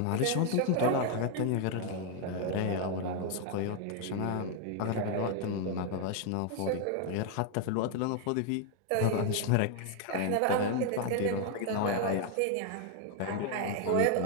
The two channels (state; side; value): different; both; correlation 0.01